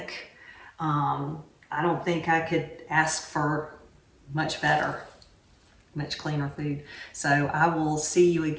I don't think I could ask for much better, much cleaner food. So I will see you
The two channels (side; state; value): both; identical; correlation 1.00